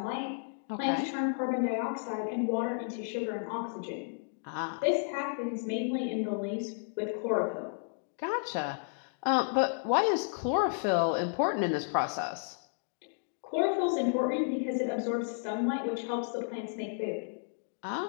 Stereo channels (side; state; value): right; silent; digital silence